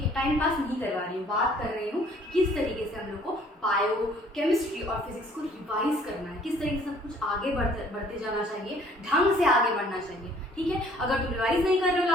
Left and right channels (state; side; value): normal; both; correlation 0.58